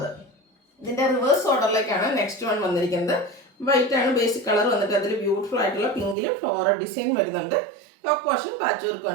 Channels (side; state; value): left; drops out; at 6.2 s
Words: ഇതിൻ്റെ റിവേഴ്സ് ഓർഡറിലേക്കാണ് നെക്സ്റ്റ് വൺ വന്നിരിക്കുന്നത്. വൈറ്റ് ആണ് ബേസിക് കളർ വന്നിട്ട് അതിൽ ബ്യൂട്ടിഫുൾ ആയിട്ടുള്ള പിങ്കിൽ ഫ്ലോറൽ ഡിസൈൻ വരുന്നുണ്ട്. യോക്ക് പോർഷൻ പാച്ച് വർക്ക്